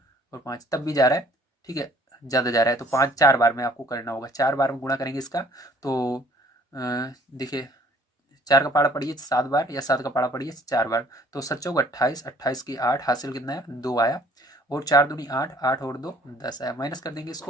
और 5 तब भी जा रहा है, ठीक है, ज़्यादा जा रहा है। तो 5 4 बार में आपको करना होगा, 4 बार में गुणा करेंगे इसका। तो देखिए 4 का पाड़ा पड़िए 7 बार, या 7 का पाड़ा पड़िए 4 बार। तो 7 चौक 28, 28 की 8, हासिल कितना है 2 आया, और 4 दूनी 8, 8 और 2 10 आया। माइनस कर देंगे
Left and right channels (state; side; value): normal; both; correlation 0.57